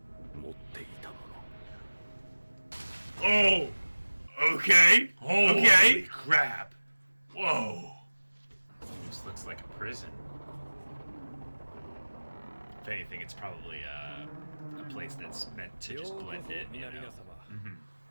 持っていたもの。Oh! Okay. Okay. Crap. Whoa. This looks like a prison. If anything, it's probably a place that's meant to just blend in, you know.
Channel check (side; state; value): both; inverted; correlation -1.00